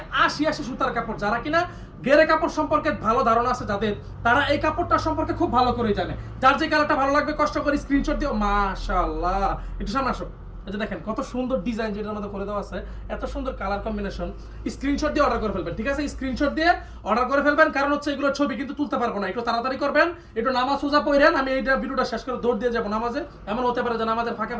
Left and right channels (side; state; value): both; identical; correlation 1.00